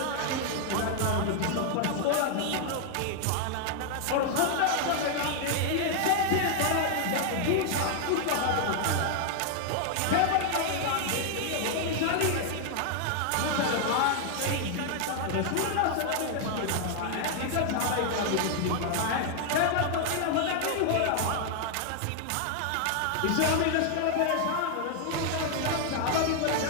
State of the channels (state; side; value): different; both; correlation 0.00